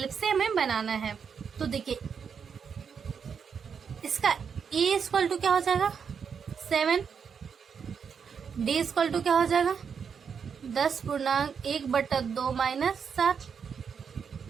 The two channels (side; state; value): left; quieter; 6.6 dB